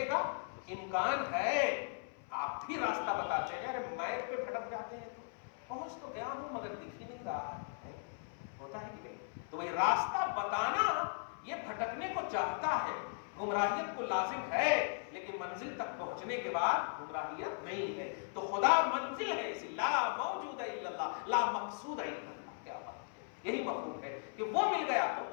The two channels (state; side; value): silent; right; 53 dB below the other